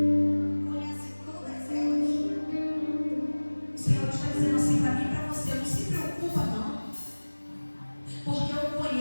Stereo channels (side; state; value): both; inverted; correlation -1.00